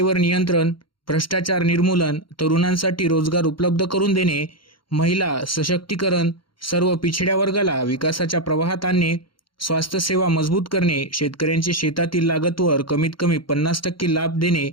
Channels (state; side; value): late; right; 0.73 ms